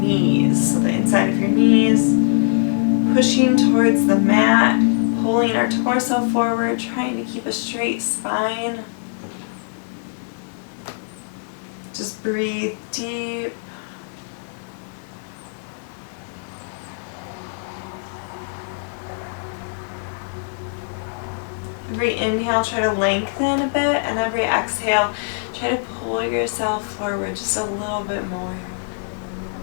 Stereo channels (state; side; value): silent; right; 64 dB below the other